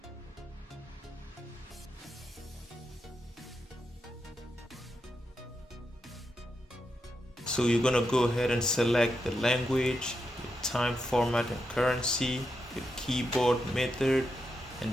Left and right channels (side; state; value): both; normal; correlation 0.85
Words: So you're gonna go ahead and select the language, your time, format, and currency, your keyboard method,